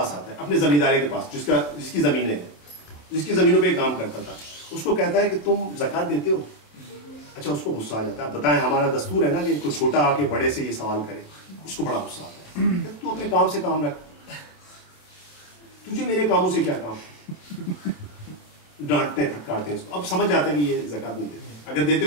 آتا ہے, اپنے زمیندارے کے پاس, جس کی زمینیں ہیں, جس کی زمینوں پہ کام کرتا تھا. اس کو کہتا ہے کہ تم زکوٰۃ دیتے ہو. اچھا, اس کو غصہ آ جاتا ہے. بتائیں, ہمارا دستور ہے نا کہ کوئی چھوٹا آ کے بڑے سے یہ سوال کرے. اس کو بڑا غصہ آتا ہے. تو اپنے کام سے کام رکھ, تجھے میرے کاموں سے کیا کام. ڈانٹتے ہیں, پھٹکارتے ہیں اس کو. اب سمجھ جاتا ہے کہ یہ زکوٰۃ نہیں دیتے, اگر دیتے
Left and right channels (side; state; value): right; late; 27 ms